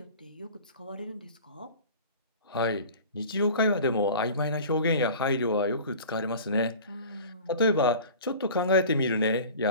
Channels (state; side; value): inverted; both; correlation -0.40